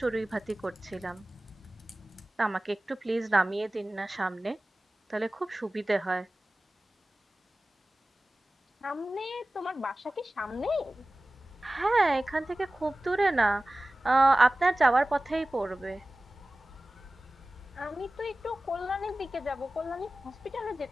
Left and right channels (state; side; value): normal; both; correlation 0.97